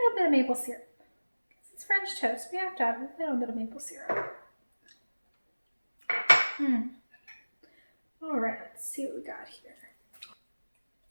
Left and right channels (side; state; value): both; inverted; correlation -1.00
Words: bit of maple syrup. It's French toast, we have to have a little bit of maple syrup. All right, let's see what we got here.